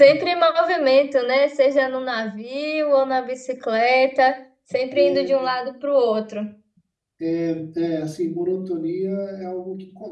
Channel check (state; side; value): identical; both; correlation 1.00